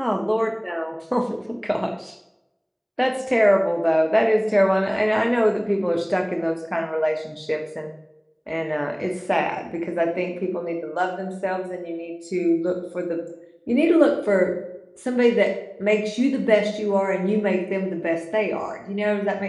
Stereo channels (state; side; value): identical; both; correlation 1.00